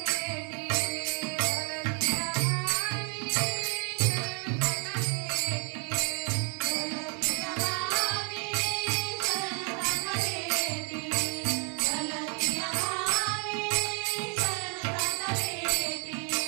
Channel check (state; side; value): quieter; left; 37.4 dB